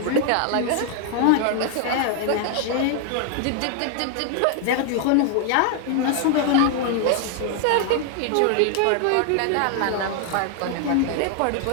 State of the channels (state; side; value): different; both; correlation 0.00